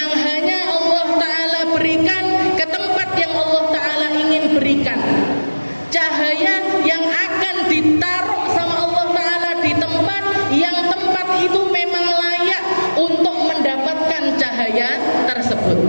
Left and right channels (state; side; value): inverted; both; correlation -1.00